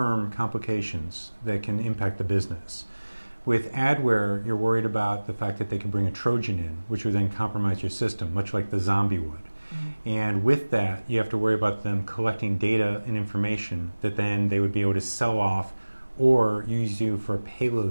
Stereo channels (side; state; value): both; inverted; correlation -1.00